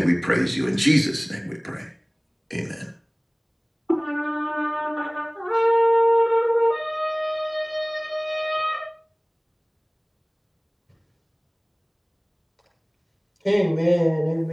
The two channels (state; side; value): identical; both; correlation 1.00